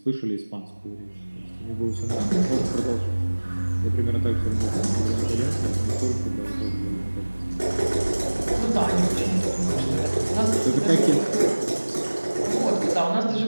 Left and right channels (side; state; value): both; inverted; correlation -1.00